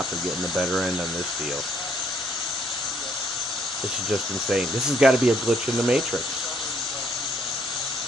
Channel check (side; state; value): both; normal; correlation 0.68